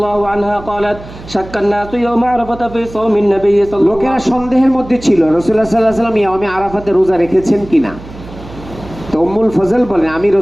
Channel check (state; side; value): noise; right; hum, 16 dB below the sound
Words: عنها قالت شك الناس يوم عرفة في صوم النبي صلى الله عليه লোকেরা وسلم সন্দেহের মধ্যে ছিল রাসূলুল্লাহ সাল্লাল্লাহু আলাইহি ওয়াসাল্লাম ইয়াউমে আরাফাতে রোজা রেখেছেন কিনা। তো উম্মুল ফজল বলেন, আমি